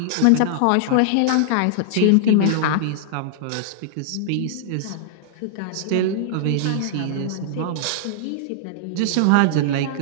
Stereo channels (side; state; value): both; different; correlation -0.01